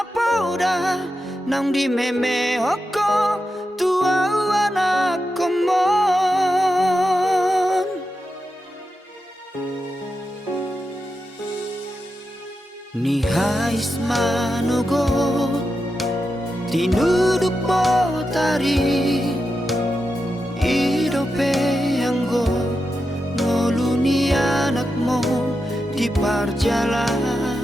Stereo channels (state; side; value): normal; both; correlation 0.89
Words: pauda nang di meme hoko tua anak komon ni hais manogo tinuduk botari perjalanan